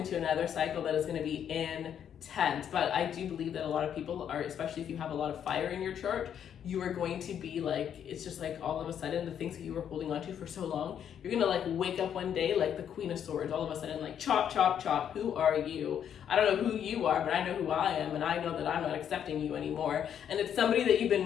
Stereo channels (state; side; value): quieter; right; 9.0 dB